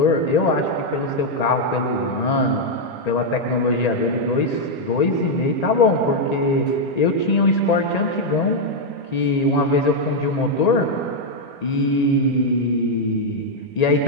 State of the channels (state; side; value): late; right; 1.8 ms